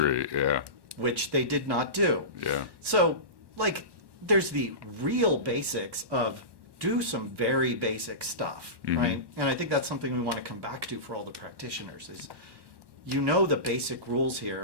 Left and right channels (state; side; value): late; left; 1.1 ms